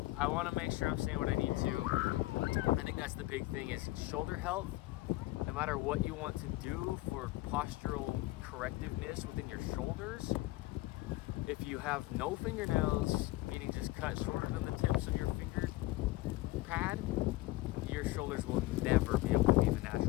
want to make sure I'm saying what I need to. I think that's the big thing, is shoulder health. No matter what you want to do for postural correctiveness within your shoulders, if you have no fingernails, meaning just cut shorter than the tips of your finger pad, your shoulders will never be able to be in the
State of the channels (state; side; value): quieter; right; 18.8 dB